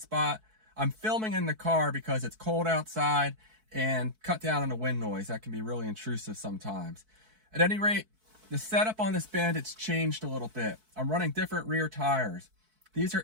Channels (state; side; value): late; left; 4.6 ms